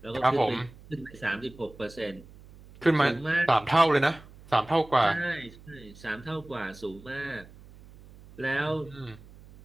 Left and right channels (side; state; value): right; noise; hum, 21 dB below the sound